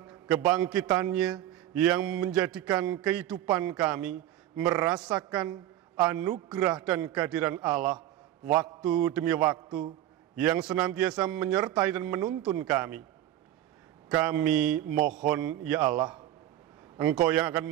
kebangkitannya yang menjadikan kehidupan kami merasakan anugerah dan kehadiran Allah waktu demi waktu yang senantiasa menyertai dan menuntun kami. Kami mohon ya Allah, Engkau yang akan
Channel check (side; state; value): left; quieter; 12.9 dB